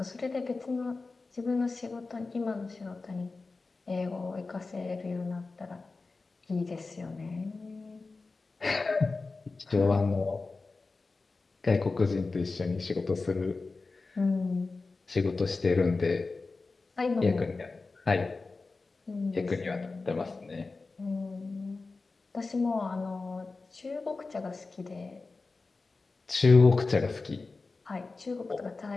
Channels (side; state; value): right; quieter; 3.8 dB